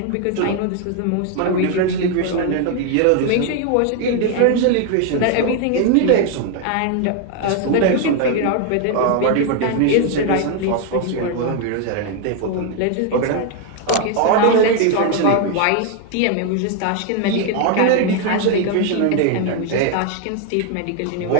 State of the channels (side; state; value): both; different; correlation 0.01